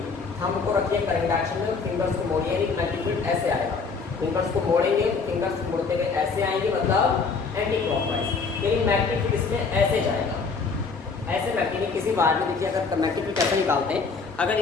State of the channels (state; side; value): quieter; right; 4.8 dB